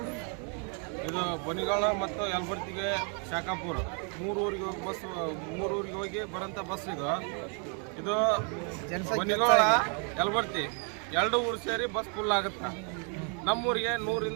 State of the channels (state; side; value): quieter; left; 39.5 dB